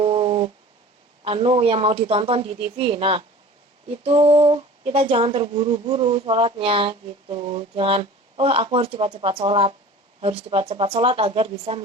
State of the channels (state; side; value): normal; both; correlation 0.41